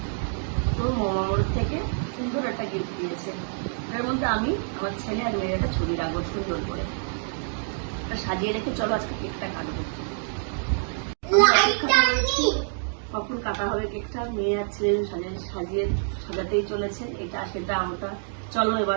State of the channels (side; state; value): left; silent; digital silence